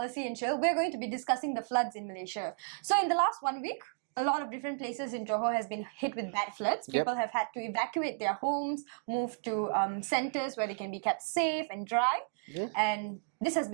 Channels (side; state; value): left; silent; digital silence